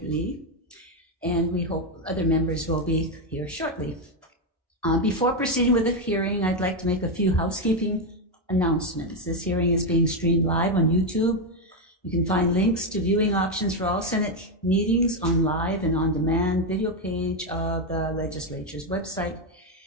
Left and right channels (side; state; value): both; normal; correlation 0.06